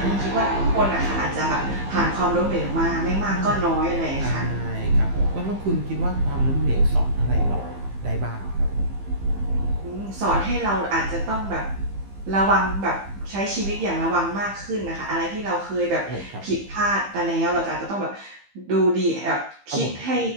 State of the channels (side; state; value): left; late; 15 ms